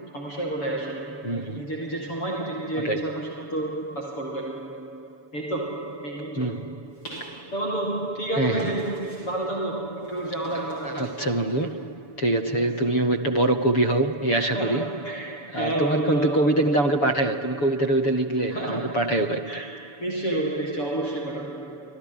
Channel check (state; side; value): late; right; 7.0 ms